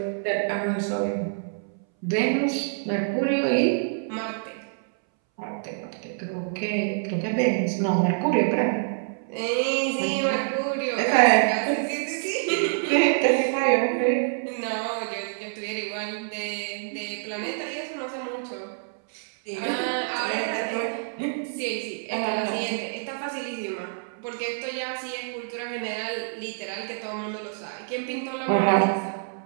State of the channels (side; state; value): left; silent; 61 dB below the other